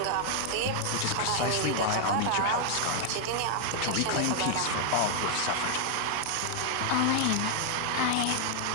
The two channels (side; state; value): both; different; correlation 0.00